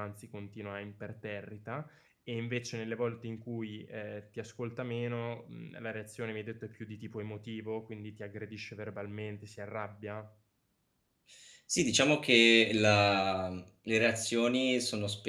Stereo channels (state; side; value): identical; both; correlation 1.00